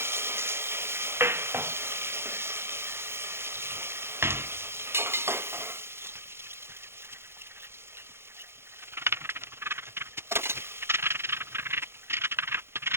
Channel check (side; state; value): left; late; 0.12 ms